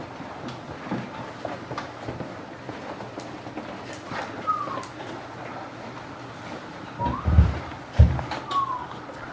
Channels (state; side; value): identical; both; correlation 1.00